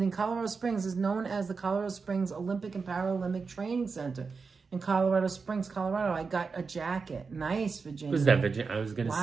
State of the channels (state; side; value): quieter; left; 4.8 dB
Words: in Colorado Springs. Is known as the Colorado Springs Olympic and Paralympic Training Center in Colorado Springs, Colorado. I got a jacket. Nice, Virginia. Was that Virginia? I was going to